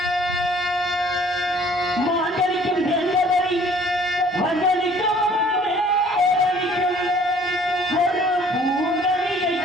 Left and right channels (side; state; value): both; normal; correlation 0.55